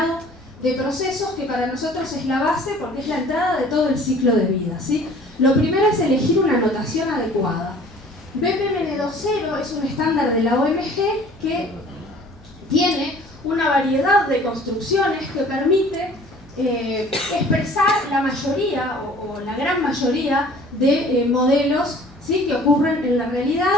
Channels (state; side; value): noise; left; hum, 27 dB below the sound